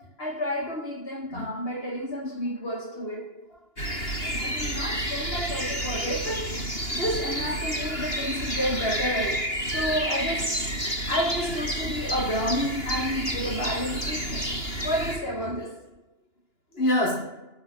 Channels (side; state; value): right; late; 2.9 ms